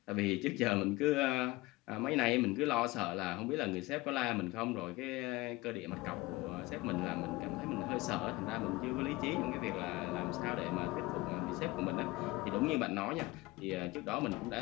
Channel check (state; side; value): quieter; right; 20.7 dB